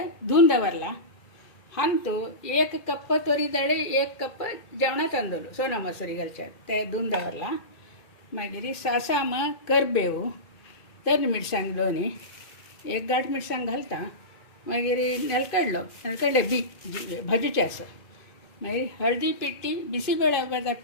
धुवन दवरला। हंतु 1 कप तोरी दाळी 1 कप जेवणा तांदूळ सोना मसुरी घालचे ते धुवन दवरला। मागीर सासाम करबेव तर मिरसांग दोनी 1 गांठ मिरसांग घालता। मागीर नेलकड्डे बी भाजूचे आसा। मागीर हळदी पिट्टी बिसीबेळा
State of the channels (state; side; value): late; right; 2.5 ms